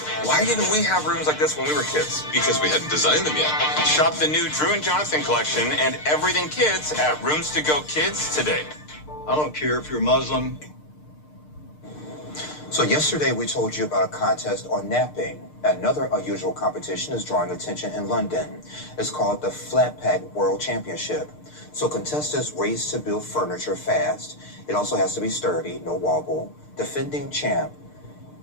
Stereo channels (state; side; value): late; right; 6.6 ms